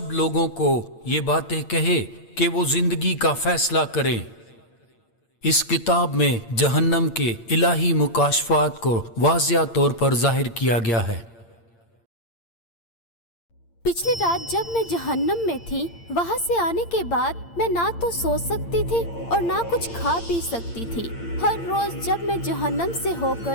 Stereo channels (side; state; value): right; late; 8.7 ms